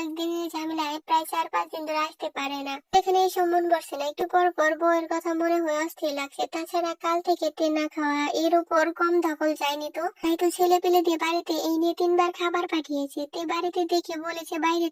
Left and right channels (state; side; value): identical; both; correlation 1.00